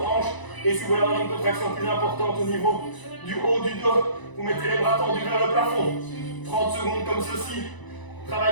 hanches. Et si vous voulez avoir une contraction plus importante au niveau du haut du dos, vous mettez les bras tendus vers le plafond. 30 secondes comme ceci.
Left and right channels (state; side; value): late; right; 1.0 ms